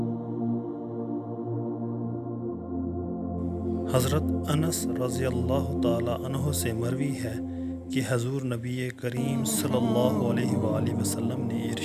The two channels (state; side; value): identical; both; correlation 1.00